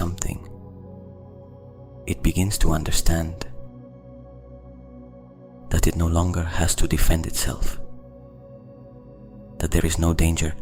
It begins to understand that it no longer has to defend itself, that there is no danger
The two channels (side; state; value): both; identical; correlation 1.00